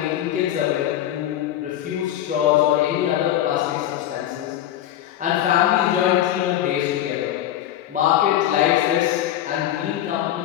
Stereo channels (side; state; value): right; quieter; 12.1 dB